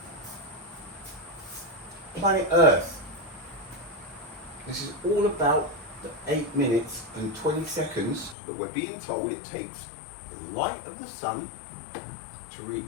Planet Earth. This is all about the 8 minutes and 20 seconds that we're being told it takes the light of the sun to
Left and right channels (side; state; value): right; drops out; at 8.3 s